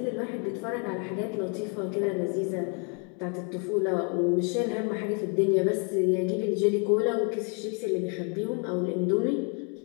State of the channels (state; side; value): quieter; right; 38.2 dB